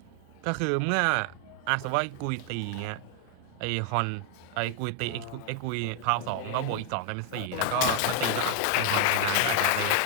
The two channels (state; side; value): different; both; correlation 0.00